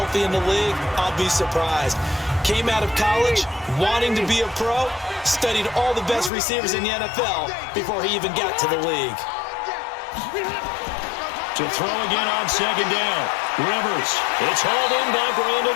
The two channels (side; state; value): right; drops out; at 6.3 s